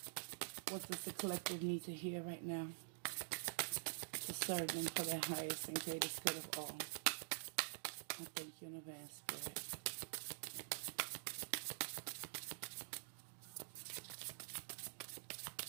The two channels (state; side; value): silent; left; digital silence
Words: What does the collective need to hear right now to serve them for their highest and greatest good of all? I thank you in advance, Spirit.